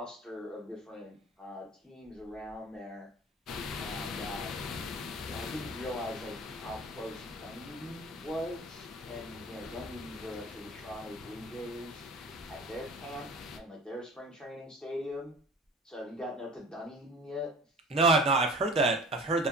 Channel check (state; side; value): normal; both; correlation 0.42